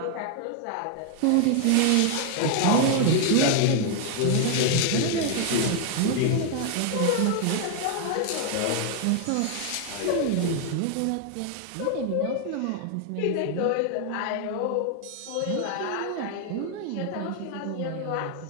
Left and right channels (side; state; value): both; different; correlation 0.00